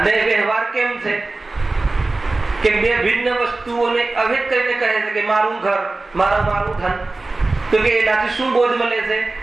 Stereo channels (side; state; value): left; quieter; 3.3 dB